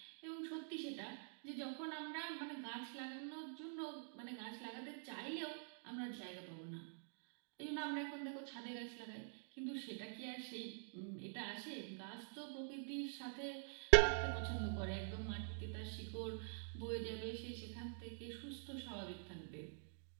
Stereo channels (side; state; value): left; silent; digital silence